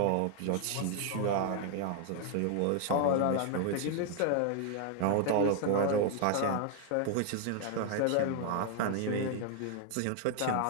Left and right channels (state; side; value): different; both; correlation 0.00